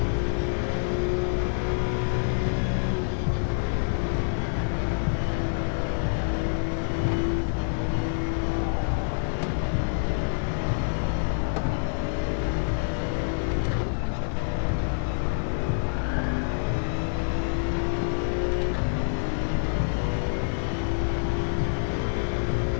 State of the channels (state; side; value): silent; right; digital silence